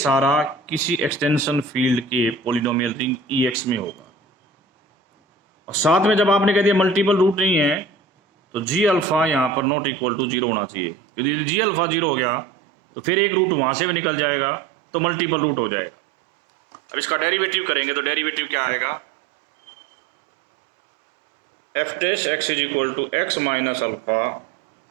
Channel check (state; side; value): drops out; left; at 9.7 s